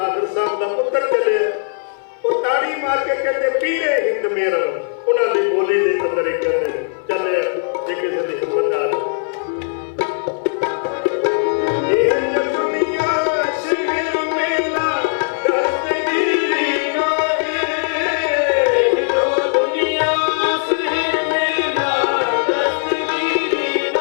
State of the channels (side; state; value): right; silent; 57 dB below the other